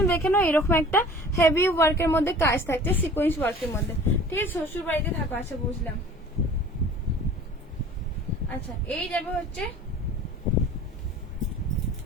দেখে নাও, এরকম একটা হেভি ওয়ার্কের মধ্যে কাজ থাকছে, সিকোয়েন্স ওয়ার্কের মধ্যে, ঠিক আছে। শ্বশুর বাড়িতে থাকো, আচ্ছা বুঝলাম। আচ্ছা এই যাবে হচ্ছে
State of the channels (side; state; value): both; normal; correlation 0.46